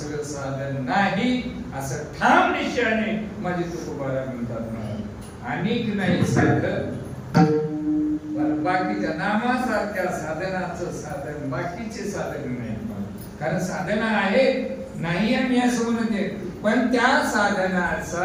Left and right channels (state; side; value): identical; both; correlation 1.00